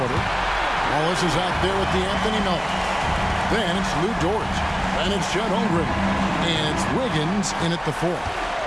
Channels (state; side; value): identical; both; correlation 1.00